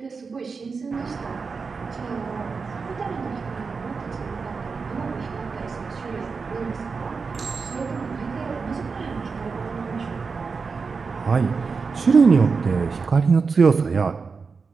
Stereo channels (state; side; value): quieter; left; 4.9 dB